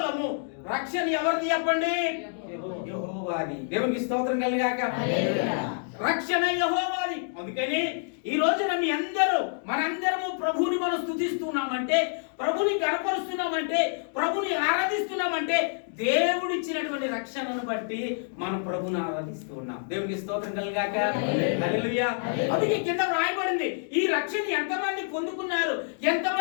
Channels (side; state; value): right; silent; digital silence